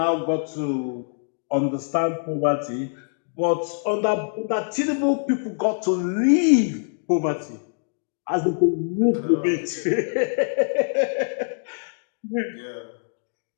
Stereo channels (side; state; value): right; silent; digital silence